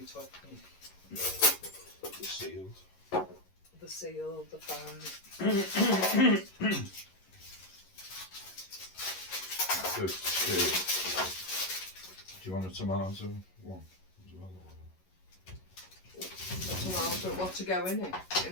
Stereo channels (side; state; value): right; late; 11 ms